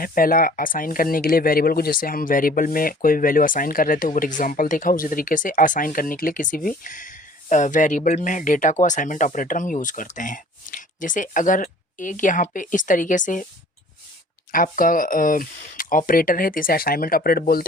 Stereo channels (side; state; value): both; normal; correlation 0.51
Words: पहला असाइन करने के लिए वेरिएबल को, जैसे हम वेरिएबल में कोई वैल्यू असाइन कर रहे थे, ऊपर एग्जांपल देखा, उसी तरीके से असाइन करने के लिए किसी भी वेरिएबल में डेटा को असाइनमेंट ऑपरेटर हम यूज़ करते हैं। जैसे अगर एक यहाँ पे इस तरीके से आपका ऑपरेटर है तो इसे असाइनमेंट ऑपरेटर